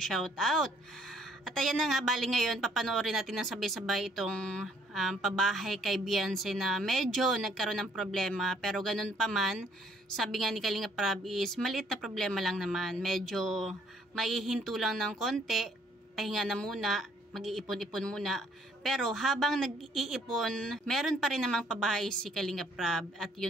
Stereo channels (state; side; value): normal; both; correlation 0.63